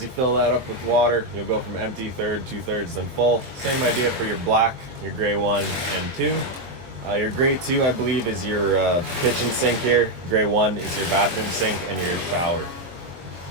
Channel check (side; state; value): left; late; 23 ms